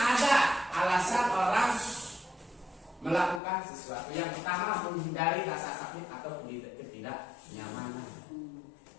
alasan orang melakukan sesuatu. Yang pertama, menghindari rasa sakit atau ketidaknyamanan.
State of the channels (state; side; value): drops out; right; at 3.4 s